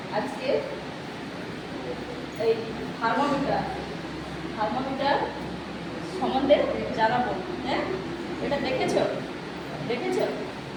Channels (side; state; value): both; identical; correlation 1.00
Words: আজকে এই থার্মোমিটার সম্বন্ধে জানাবো। হ্যাঁ, এটা দেখেছো